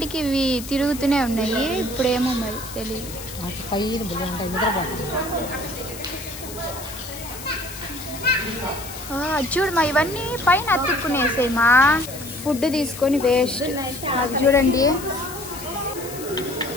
ఇవి తిరుగుతూనే ఉన్నాయి, ఇప్పుడేమో మరి తెలియదు. చూడు మా ఇవన్నీ పైన అతుక్కునేసాయి మా. ఫుడ్ తీసుకొని వేస్ట్. అది చూడండి,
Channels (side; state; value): left; noise; hiss, 13 dB below the sound